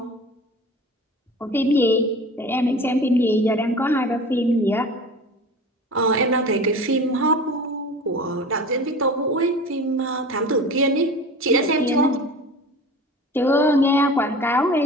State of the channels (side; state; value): both; normal; correlation 0.37